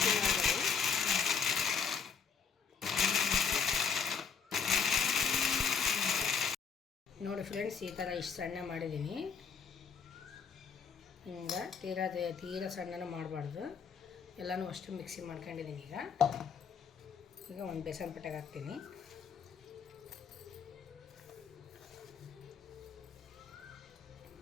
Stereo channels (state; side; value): quieter; right; 6.2 dB